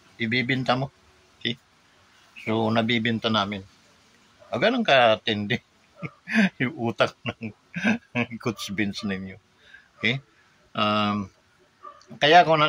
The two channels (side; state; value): both; identical; correlation 1.00